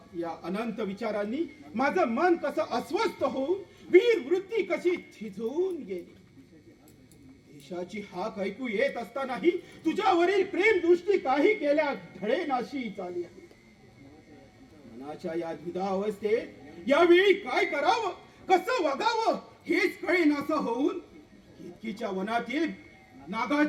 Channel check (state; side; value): identical; both; correlation 1.00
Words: या अनंत विचारांनी माझं मन कसं अस्वस्थ होऊन वीर वृत्ती कशी थिजून गेली. देशाची हाक ऐकू येत असतानाही तुझ्यावरील प्रेम दृष्टी काही केल्या ढळेनाशी चालली आहे. मनाच्या या द्विधा अवस्थेत यावेळी काय करावं, कसं वागावं हेच कळेनासं होऊन केतकीच्या वनातील